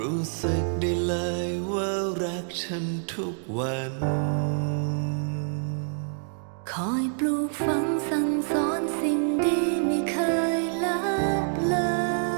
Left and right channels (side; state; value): left; silent; digital silence